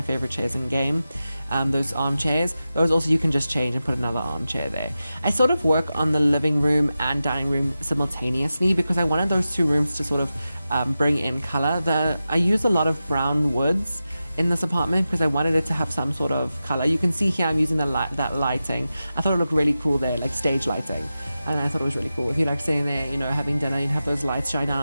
favorite chairs in game. Those armchairs. Those also you can just change and put another armchair there. I sort of work on the living room and dining room simultaneously because I wanted those 2 rooms to sort of bring in color. I use a lot of brown woods in this apartment because I wanted it to have some sort of color. You can see here I'm using that lighting. I thought it looked really cool there, like stage lighting. And I thought it was really cool. If you like sitting there, having dinner and have those lights shine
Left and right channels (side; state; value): both; inverted; correlation -0.93